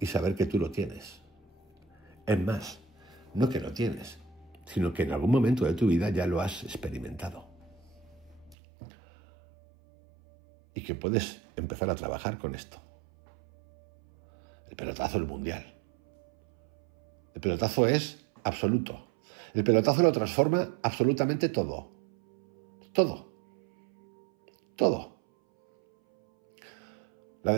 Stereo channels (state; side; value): drops out; left; at 8.6 s